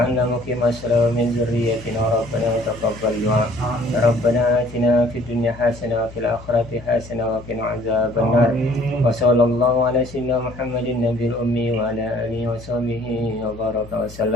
مقيم الصلاة ومن ذريتنا ربنا تقبل دعاء ربنا آتنا في الدنيا حسنة وفي الآخرة حسنة وقنا عذاب النار وصلى الله على سيدنا محمد النبي الأمي وعلى آله وصحبه وبارك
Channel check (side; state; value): left; noise; hum, 17 dB below the sound